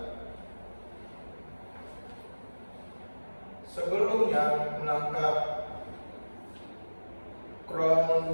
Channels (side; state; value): both; inverted; correlation -1.00